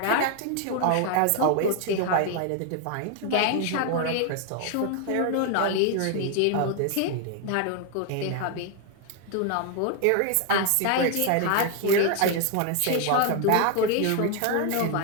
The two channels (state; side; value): different; both; correlation 0.01